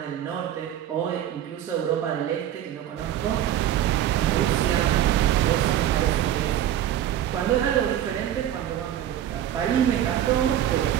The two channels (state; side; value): quieter; left; 11.2 dB